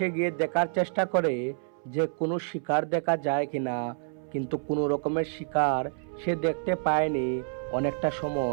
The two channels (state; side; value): silent; left; 59 dB below the other